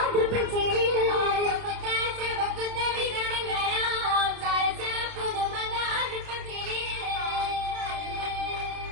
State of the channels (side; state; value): left; late; 29 ms